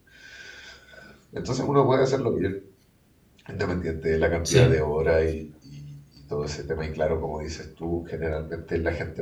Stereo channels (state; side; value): identical; both; correlation 1.00